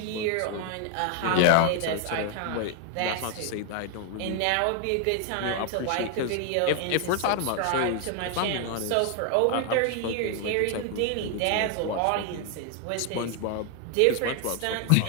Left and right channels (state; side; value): different; both; correlation 0.00